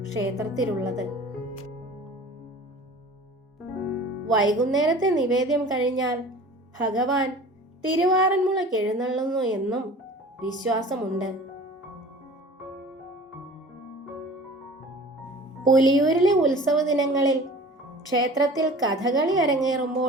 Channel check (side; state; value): both; normal; correlation 0.43